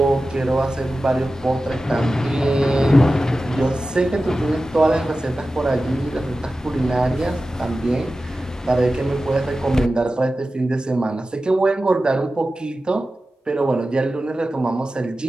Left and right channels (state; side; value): normal; both; correlation 0.94